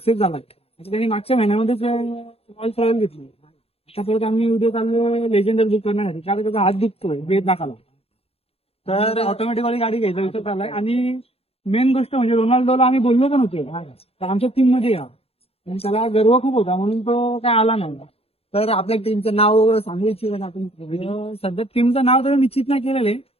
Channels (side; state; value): right; late; 0.29 ms